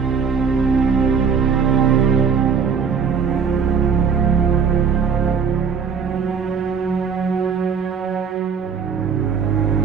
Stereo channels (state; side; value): quieter; left; 6.3 dB